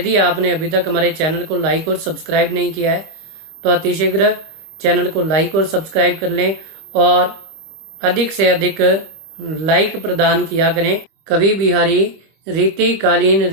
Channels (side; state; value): left; late; 25 ms